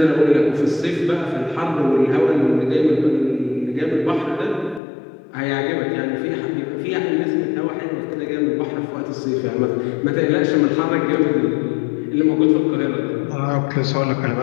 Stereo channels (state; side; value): drops out; right; at 4.8 s